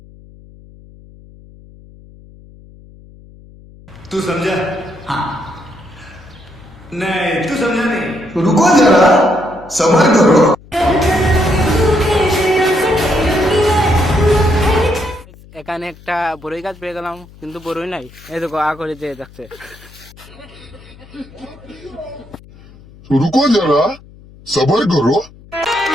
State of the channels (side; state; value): left; noise; hum, 22 dB below the sound